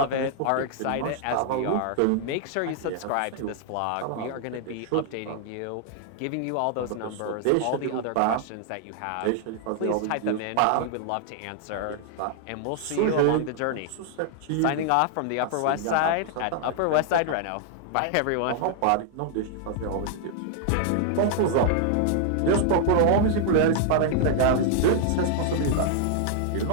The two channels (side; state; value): both; different; correlation 0.00